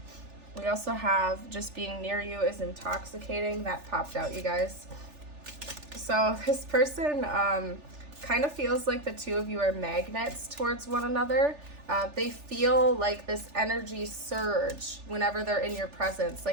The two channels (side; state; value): left; late; 3.4 ms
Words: We also have just being near you is intoxicating. That popped out, you guys. So this person kind of feels like the two of you are magnets towards one another. They feel like this energy surge whenever they're in your presence,